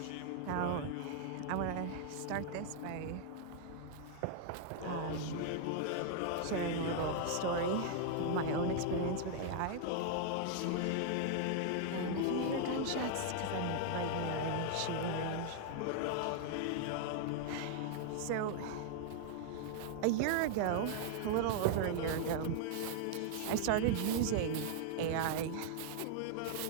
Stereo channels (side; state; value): both; different; correlation 0.00